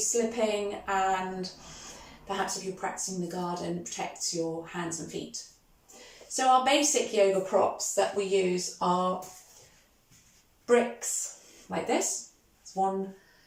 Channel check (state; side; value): identical; both; correlation 1.00